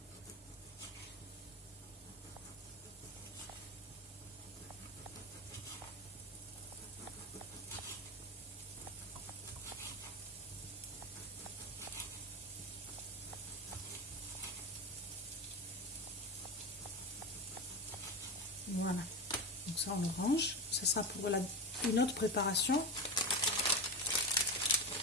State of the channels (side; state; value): both; normal; correlation 0.20